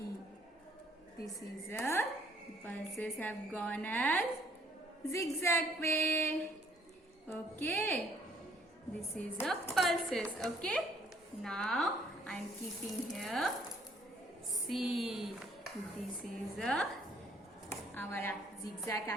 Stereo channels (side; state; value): both; normal; correlation 0.63